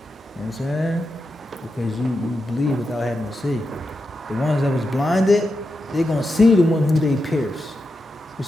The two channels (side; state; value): both; normal; correlation 0.88